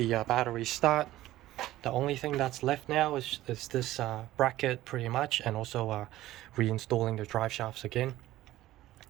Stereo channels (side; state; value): left; quieter; 15.4 dB